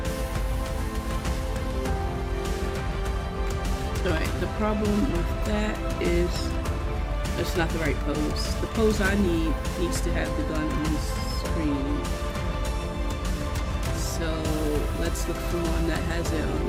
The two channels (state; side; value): identical; both; correlation 1.00